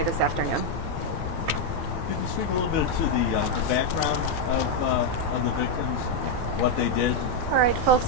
this afternoon. Could you speak a little bit to the background of the victims, what they did? All right, folks,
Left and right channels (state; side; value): normal; both; correlation 0.01